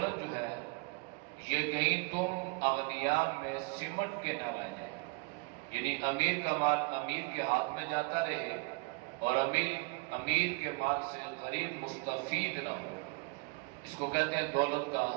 جو ہے یہ کہیں تم اغنیاء میں سمٹ کے نہ رہ جائے، یعنی امیر کا مال امیر کے ہاتھ میں جاتا رہے اور امیر کے مال سے غریب مستفید نہ ہو۔ اس کو کہتے ہیں دولت کا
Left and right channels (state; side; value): quieter; left; 28.3 dB